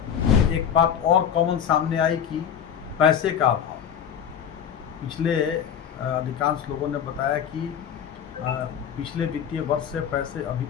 एक बात और कॉमन सामने आई कि पैसे का अभाव। पिछले अधिकांश लोगों ने बताया कि पिछले वित्तीय वर्ष से पैसे अभी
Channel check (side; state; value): right; quieter; 8.5 dB